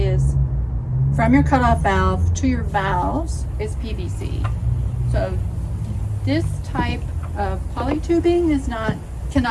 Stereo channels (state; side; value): identical; both; correlation 1.00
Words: from your cutoff valve to your valves is PVC. So this type of polytubing